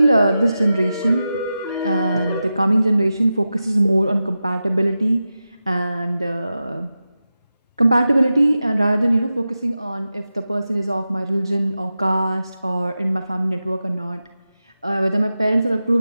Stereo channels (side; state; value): both; inverted; correlation -0.92